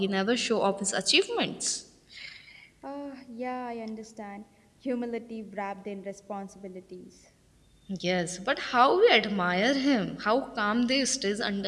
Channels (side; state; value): both; identical; correlation 1.00